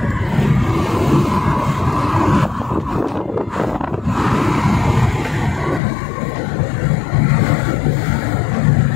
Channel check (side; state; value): right; drops out; at 5.8 s